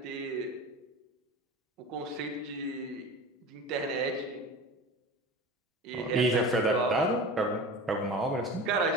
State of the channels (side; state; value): both; normal; correlation 0.34